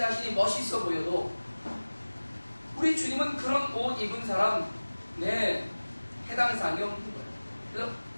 멋있어 보여도 우리 주님은 그런 옷 입은 사람, 해당 사항이 없는 거예요. 그래서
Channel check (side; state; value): both; inverted; correlation -1.00